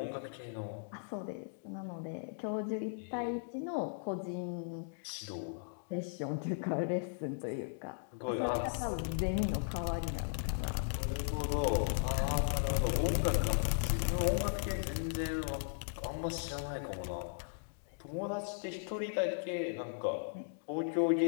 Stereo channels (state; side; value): silent; right; digital silence